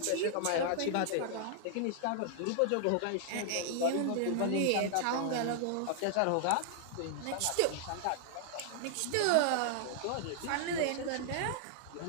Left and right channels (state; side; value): different; both; correlation -0.01